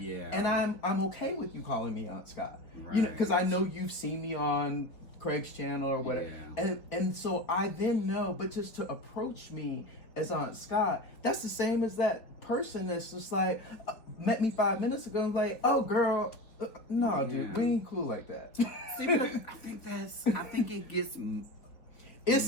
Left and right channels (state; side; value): late; right; 4.2 ms